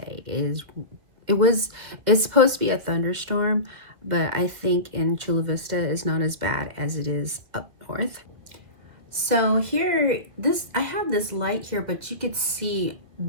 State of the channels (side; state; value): left; late; 2.3 ms